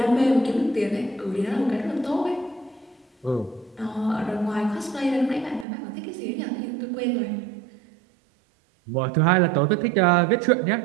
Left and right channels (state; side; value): drops out; left; at 5.7 s